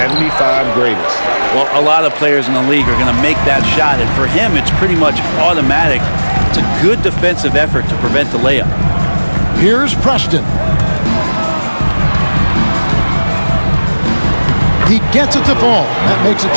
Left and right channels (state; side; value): inverted; both; correlation -1.00